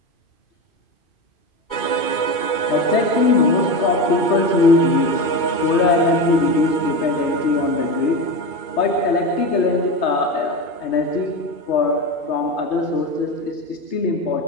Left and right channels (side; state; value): right; late; 2.3 ms